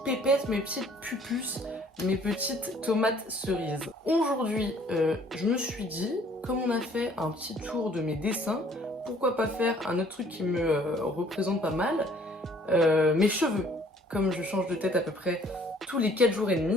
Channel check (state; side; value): normal; both; correlation 0.58